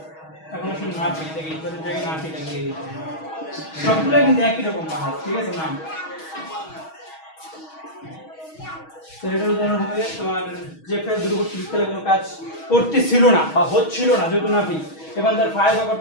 এখন আসলে নাফি থেকে ইজাফের জায়গায় নাফি লাগিয়ে দিতে হবে, সবগুলো কিন্তু একই রকম বাহাজ, ঠিক আছে নাম। তো এটার উদাহরণ হবে তোমার যে ফেল দুর্বৃত্তকালে কোনো কাজ করতেছিল না বা হচ্ছিল না যেহেতু নাফি এবং তার ফাইল বা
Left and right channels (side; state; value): right; late; 6.3 ms